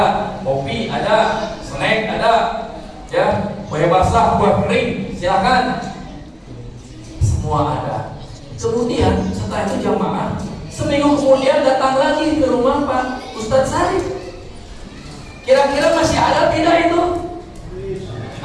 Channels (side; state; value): both; identical; correlation 1.00